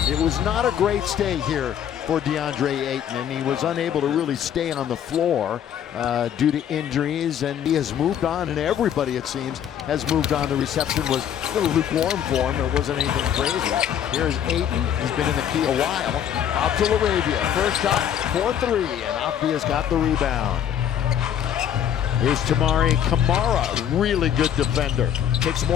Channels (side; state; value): right; quieter; 9.5 dB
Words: It was not a great stay here for DeAndre Ayton, and he was unable to really stay on the floor due to injuries, and he has moved on, and everybody, it seems, has moved on. The reception was a little lukewarm for him. It wasn't anything crazy. Here's Ayton. He's been in the key a while. Out to LaRavia. First shot for three, and Avdia's got the rebound. Here's Tamari Kamara, really good defender. Takes